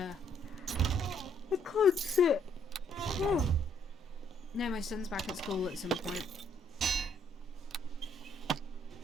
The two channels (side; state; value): both; normal; correlation 0.68